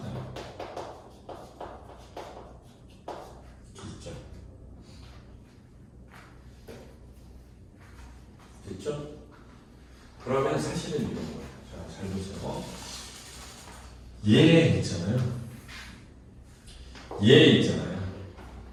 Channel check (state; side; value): identical; both; correlation 1.00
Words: 됐죠? 그러면 사실은 이런 거예요. 자, 잘 보세요. 얘 있잖아요. 얘 있잖아요.